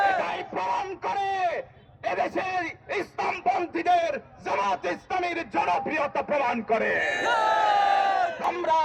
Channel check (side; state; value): both; identical; correlation 1.00